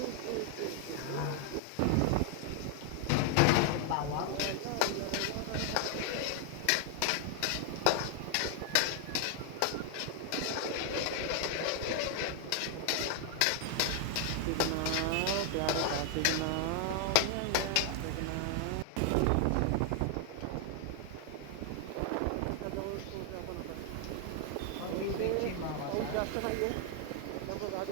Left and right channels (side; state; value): both; different; correlation 0.00